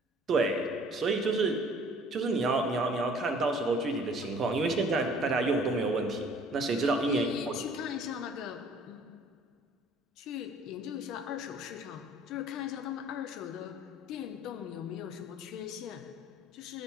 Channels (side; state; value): both; normal; correlation 0.54